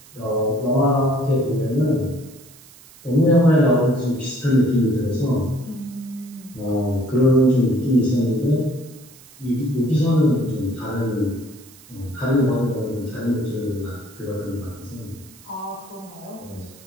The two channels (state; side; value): noise; right; hiss, 23 dB below the sound